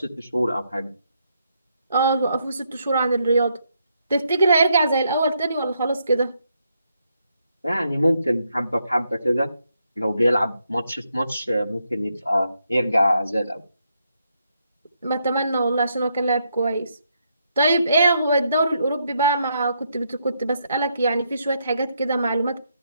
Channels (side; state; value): both; inverted; correlation -0.78